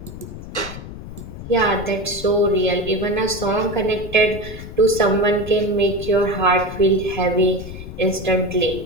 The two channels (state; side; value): noise; left; rumble, 11 dB below the sound